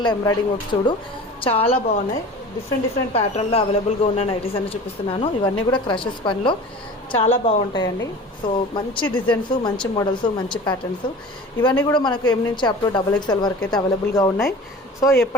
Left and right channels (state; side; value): normal; both; correlation 0.39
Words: ఎంబ్రాయిడింగ్ వర్క్ చూడు చాలా బాగున్నాయి. డిఫరెంట్ ప్యాటర్న్లో అవైలబుల్గా ఉన్న నైటీస్ అని చూపిస్తున్నాను. ఇవన్నీ కూడా క్రషెస్ పనిలో చాలా బాగుంటాయండి. సో మంచి డిజైన్స్, మంచి మోడల్స్, మంచి ప్యాటర్న్స్ ఇవన్నీ కూడా మనకు ఎం నుంచి అప్ టు XXL వరకు అయితే అవైలబుల్గా ఉన్నాయి. సో